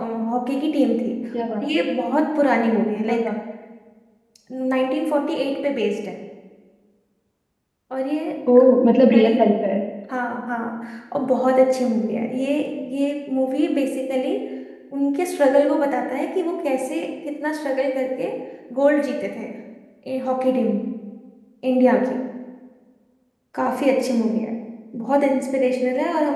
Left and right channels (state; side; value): identical; both; correlation 1.00